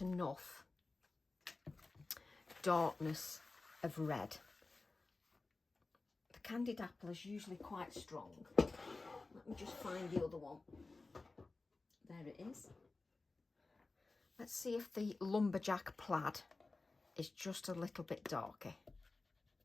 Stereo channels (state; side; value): quieter; right; 3.5 dB